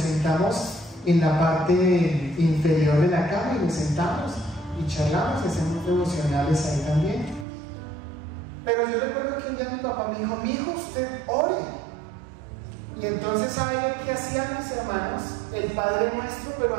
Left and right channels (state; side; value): drops out; left; at 7.5 s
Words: en la parte inferior de la cama y nos sentamos y charlamos y hacemos devocionales ahí también. Pero yo recuerdo que un día mi papá me dijo: mi hijo, usted ore. Y entonces, ¿sabe qué hacían mis hermanos? El Padre Nuestro, pero